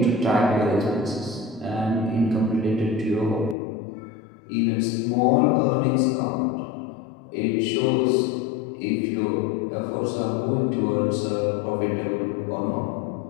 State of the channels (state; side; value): drops out; right; at 3.6 s